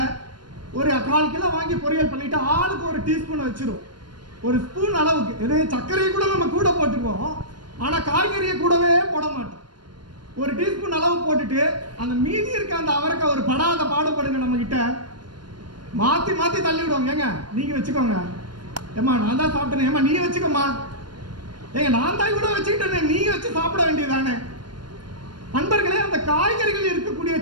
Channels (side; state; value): left; late; 0.71 ms